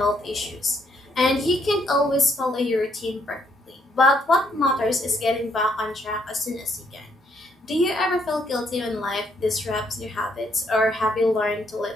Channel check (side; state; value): both; normal; correlation 0.71